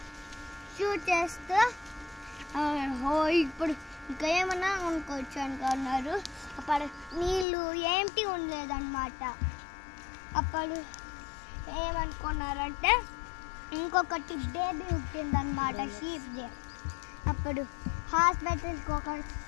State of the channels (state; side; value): drops out; right; at 7.5 s